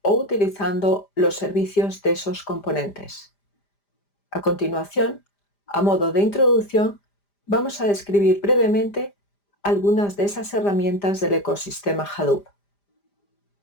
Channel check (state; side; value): late; right; 5.0 ms